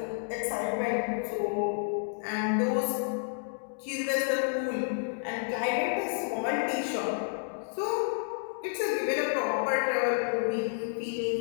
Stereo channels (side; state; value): right; silent; digital silence